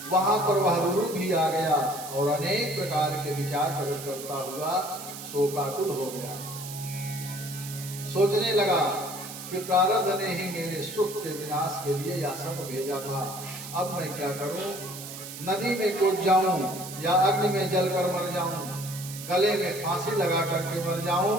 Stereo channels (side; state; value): right; noise; hiss, 11 dB below the sound